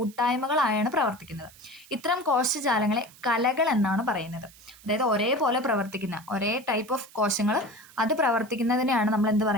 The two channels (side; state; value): right; noise; hiss, 23 dB below the sound